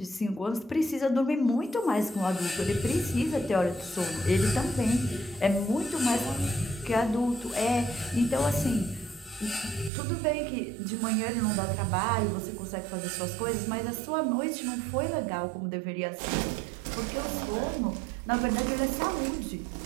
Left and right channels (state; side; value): drops out; left; at 9.9 s